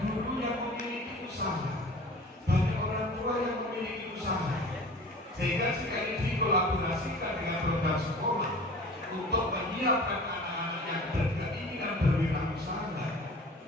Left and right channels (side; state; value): both; normal; correlation 0.42